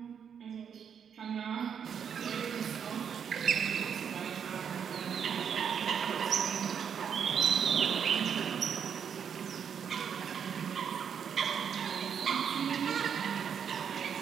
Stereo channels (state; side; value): quieter; left; 7.6 dB